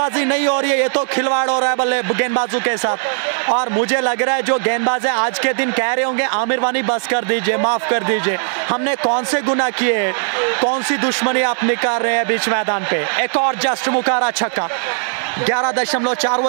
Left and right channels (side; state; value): left; silent; 62 dB below the other